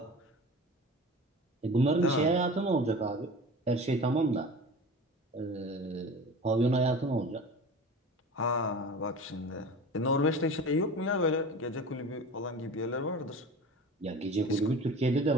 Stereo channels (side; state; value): both; normal; correlation 0.36